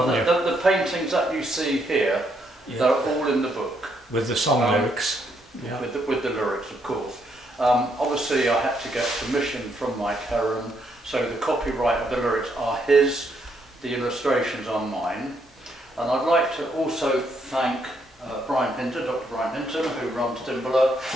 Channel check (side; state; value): both; normal; correlation 0.74